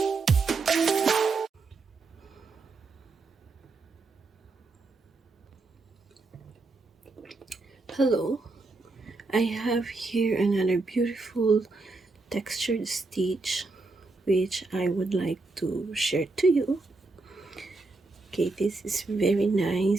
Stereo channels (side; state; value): left; quieter; 3.6 dB